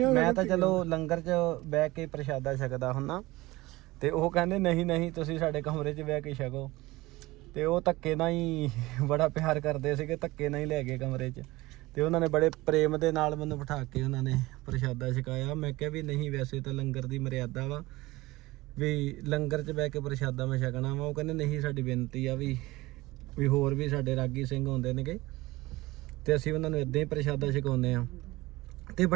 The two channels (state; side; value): quieter; left; 19.9 dB